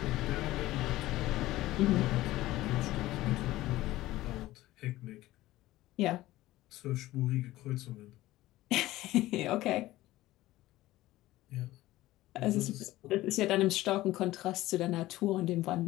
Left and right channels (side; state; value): right; quieter; 16.6 dB